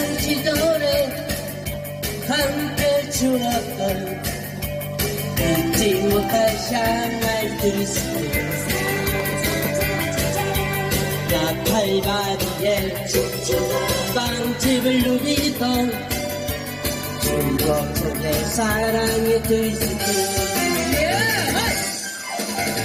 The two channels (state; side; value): identical; both; correlation 1.00